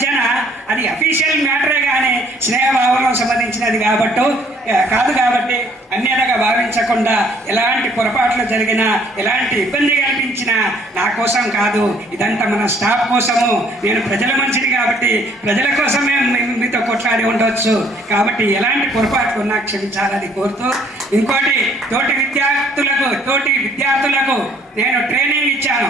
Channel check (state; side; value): normal; both; correlation 0.61